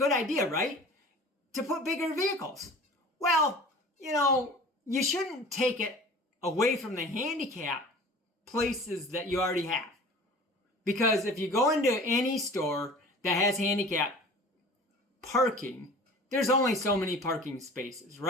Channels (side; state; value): both; normal; correlation 0.42